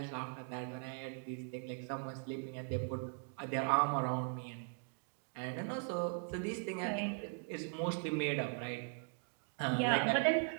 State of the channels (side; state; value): left; silent; 51 dB below the other